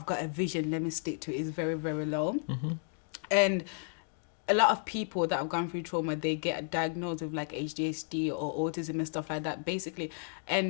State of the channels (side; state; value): right; silent; digital silence